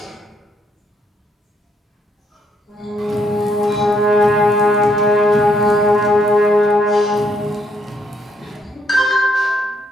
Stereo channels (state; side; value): normal; both; correlation 0.72